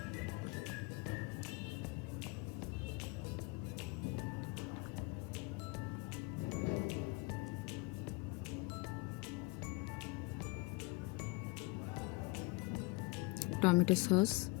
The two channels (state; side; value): quieter; right; 24.4 dB